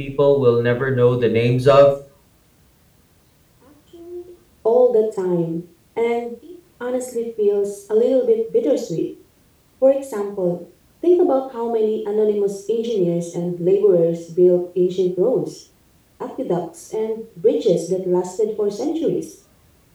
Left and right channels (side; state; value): both; identical; correlation 1.00